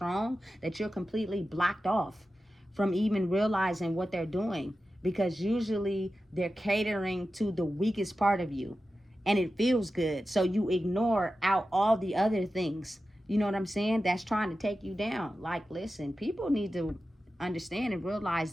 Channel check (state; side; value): normal; both; correlation 0.93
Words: that you're completely blocked off from even realizing what they're doing, because usually they're catering to the weakest part of you and it feels good, so you ignore out all the other things, you know what I'm saying, that's trying to take you down. Like listen, people need to understand and realize